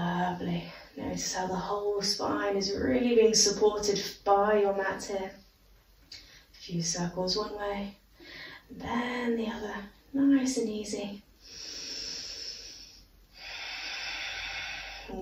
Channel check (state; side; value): identical; both; correlation 1.00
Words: Notice how the whole spine is really being supported by your mat here. A few circles one way, and then the other. Nice and easy.